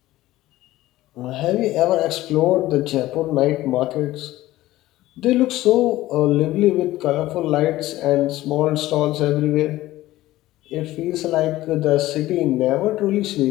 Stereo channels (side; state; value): right; quieter; 16.2 dB